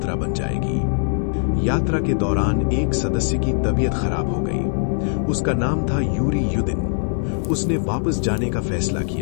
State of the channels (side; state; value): right; silent; 61 dB below the other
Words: बन जाएगी। यात्रा के दौरान एक सदस्य की तबीयत खराब हो गई। उसका नाम था यूरी युदिन। उसने वापस जाने का फैसला